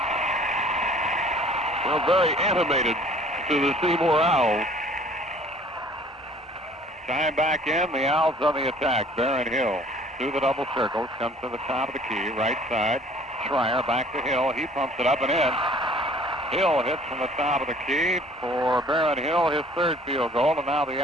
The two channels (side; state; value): both; normal; correlation 0.53